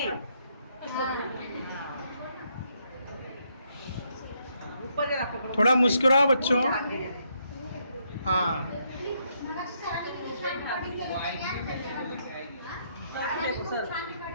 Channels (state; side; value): inverted; both; correlation -0.75